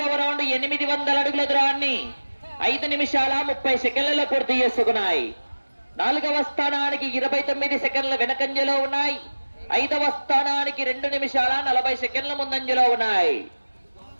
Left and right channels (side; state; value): both; inverted; correlation -1.00